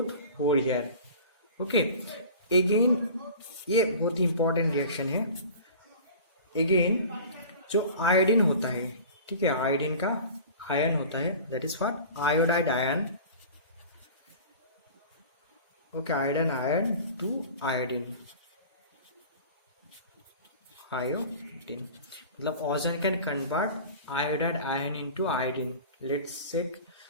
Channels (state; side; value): inverted; both; correlation -0.39